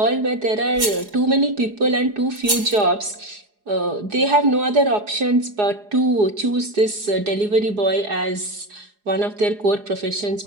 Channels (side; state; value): left; late; 4.8 ms